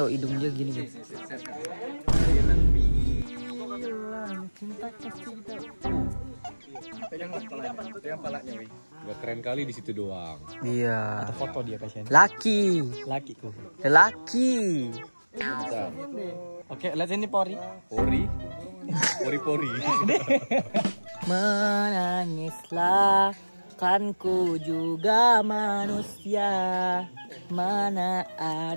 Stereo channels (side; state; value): both; inverted; correlation -1.00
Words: hidung dia gini guys. Pegang palanya, weh. Gak keren kali di situ doang. Iya. Foto dia kasihan. Laki. Lakiku. Laki. Oke, lihat ini Pori. Pori. Menangislah, kan ku juga manusia. Mana